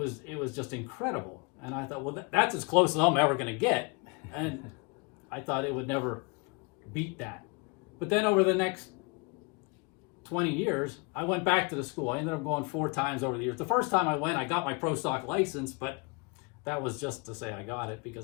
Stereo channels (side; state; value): right; quieter; 30.5 dB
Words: just incredible. And I thought, well, that's as close as I'm ever going to get. And I thought it would never beat that. But then over the next 20 years, I went back to the school. I ended up going 4 times over the years. The first time I went, I got my pro stock license, but that was just to say I got it,